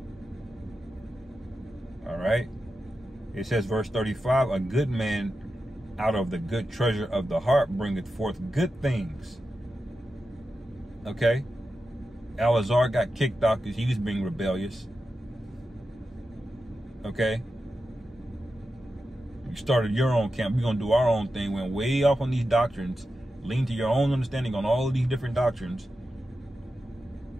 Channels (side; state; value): both; normal; correlation 0.90